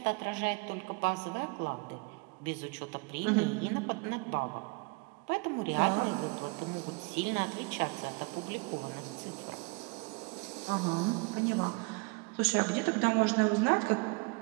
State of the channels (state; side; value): quieter; left; 28.8 dB